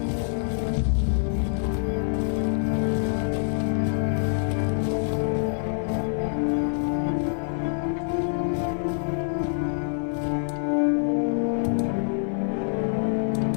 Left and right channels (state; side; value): silent; right; digital silence